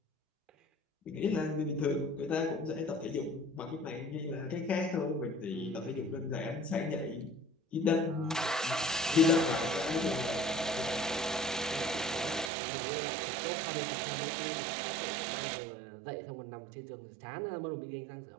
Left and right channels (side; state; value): left; drops out; at 12.5 s